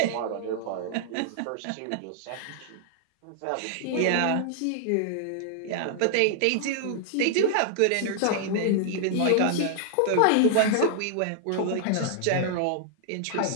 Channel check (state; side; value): different; both; correlation -0.01